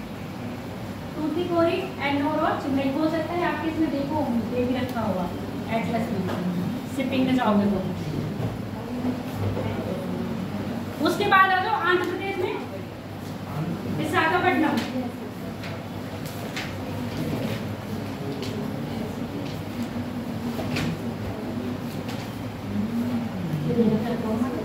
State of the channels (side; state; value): both; identical; correlation 1.00